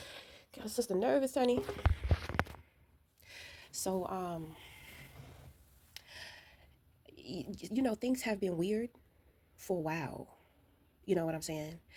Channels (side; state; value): both; identical; correlation 1.00